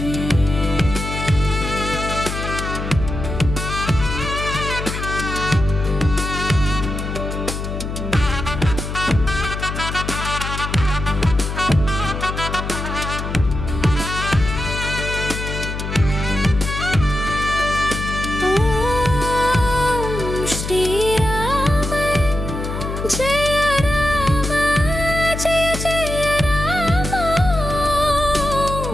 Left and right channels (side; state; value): left; noise; hum, 5 dB below the sound